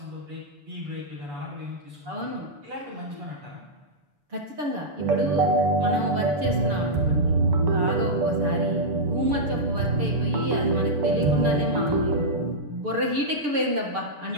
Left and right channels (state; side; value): late; left; 6.9 ms